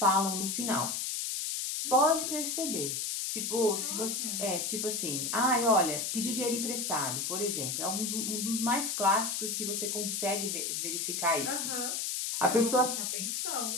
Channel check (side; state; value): left; noise; hiss, 1 dB below the sound